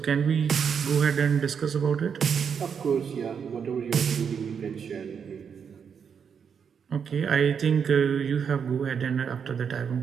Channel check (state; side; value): quieter; left; 6.9 dB